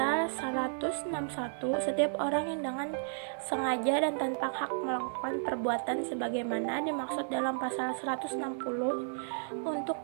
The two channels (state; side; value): silent; left; digital silence